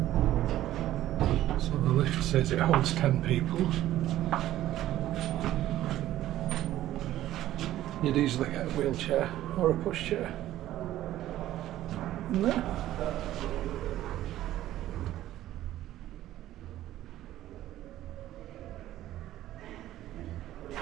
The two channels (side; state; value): left; quieter; 13.8 dB